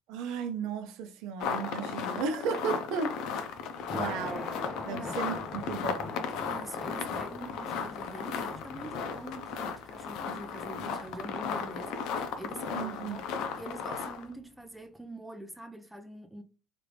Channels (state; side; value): normal; both; correlation 0.38